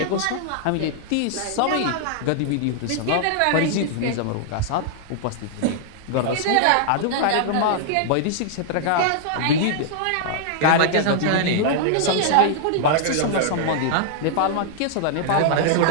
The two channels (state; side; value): different; both; correlation -0.01